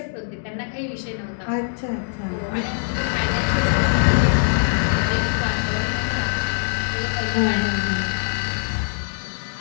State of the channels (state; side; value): silent; right; digital silence